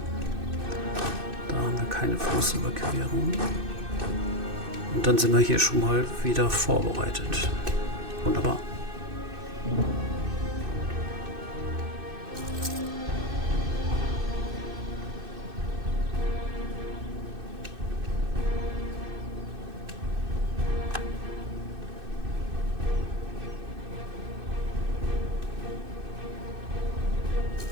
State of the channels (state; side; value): late; left; 2.6 ms